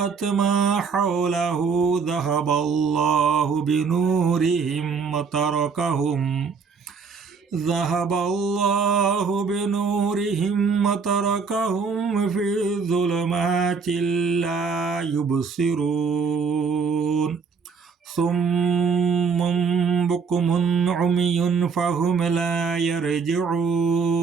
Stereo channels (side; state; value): left; quieter; 5.5 dB